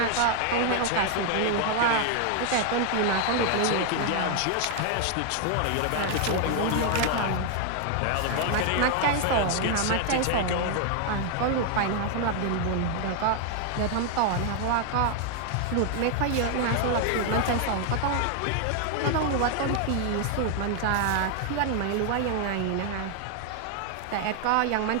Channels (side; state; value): both; different; correlation 0.00